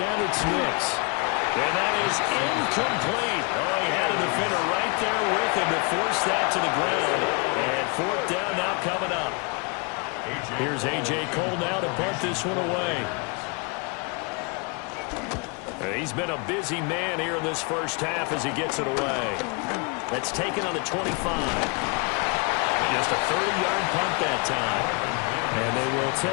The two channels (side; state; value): right; quieter; 32.5 dB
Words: it's Nix. And that is incomplete. Oh, he had a defender right there with him to force that to the ground. And 4th down now coming up. Here's A.J. Cole now to punt this one away. He's been a busy man here in this first half as he gets it away. That's taken on the 25. Just a 30-yard punt that time. And they will